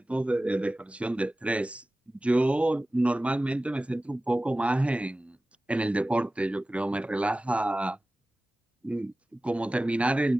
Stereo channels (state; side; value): normal; both; correlation 0.96